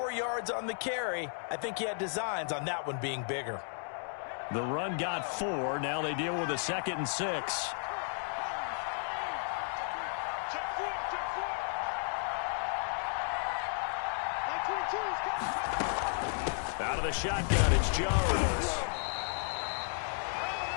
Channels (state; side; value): silent; right; 55 dB below the other